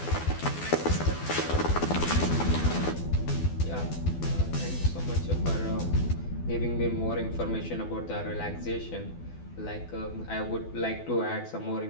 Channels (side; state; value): right; late; 12 ms